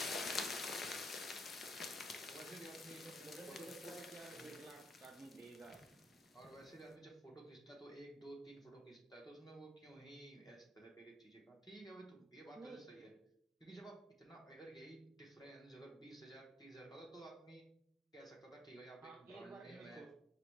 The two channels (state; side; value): normal; both; correlation 0.70